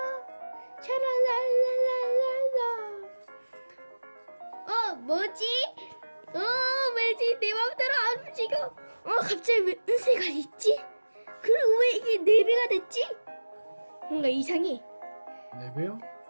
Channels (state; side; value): inverted; both; correlation -1.00